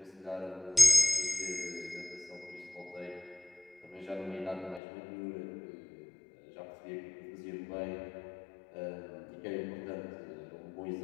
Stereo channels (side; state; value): right; drops out; at 4.8 s